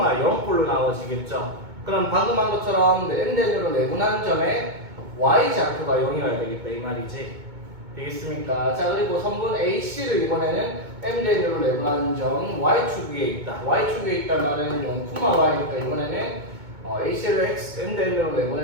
나와지겠죠. 그럼 방금 한 것처럼 M 대 N으로 내분하는 점에 Y좌표가 0이어야 되겠다 이 말이지. 되겠습니까? 자, 그리고 선분 AC를 이번에는 M 대 N으로 내분하는 점 Y축 위에 있다. Y축 위에 있단 말은 0, Y니까 이번에는 AC를 M 대 N으로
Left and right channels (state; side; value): late; left; 2.2 ms